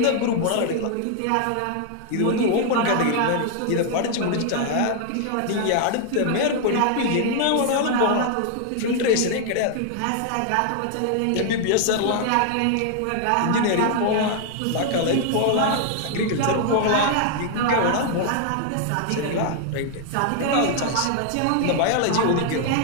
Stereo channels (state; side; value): different; both; correlation 0.00